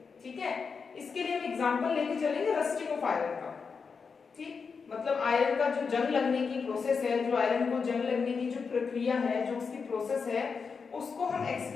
ठीक है, इसके लिए हम एग्जांपल लेके चलेंगे रस्टिंग ऑफ आयरन का। ठीक, मतलब आयरन का जो जंग लगने की प्रोसेस है, जो आयरन को जंग लगने की जो प्रक्रिया है, जो उसकी प्रोसेस है, उसको हम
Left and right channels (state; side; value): quieter; right; 5.4 dB